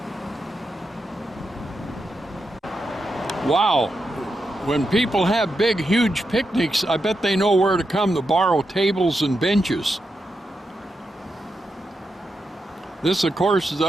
Wow, when people have big, huge picnics, I bet they know where to come to borrow tables and benches. This, of course, is the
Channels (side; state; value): both; normal; correlation 0.86